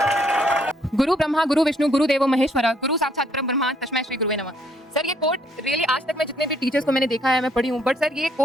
गुरु ब्रह्मा गुरु विष्णु गुरु देवो महेश्वरा गुरु साक्षात परम ब्रह्मा तस्मै श्री गुरुवे नमः. सर ये कोट रियली आज तक मैं जितने भी टीचर्स को मैंने देखा है, मैं पढ़ी हूँ, बट सर ये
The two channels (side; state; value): both; normal; correlation 0.68